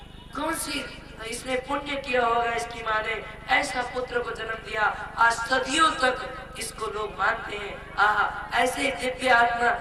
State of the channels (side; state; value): both; identical; correlation 1.00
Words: कौन सी इसने पुण्य किया होगा, इसकी माँ ने ऐसा पुत्र को जन्म दिया। आज सदियों तक इसको लोग मानते हैं। आहा ऐसे दिव्य आत्मा